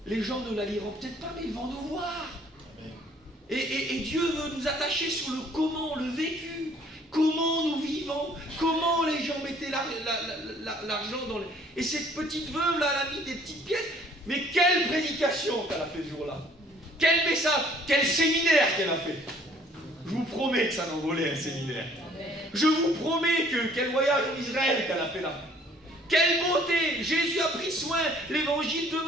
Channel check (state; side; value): normal; both; correlation 0.58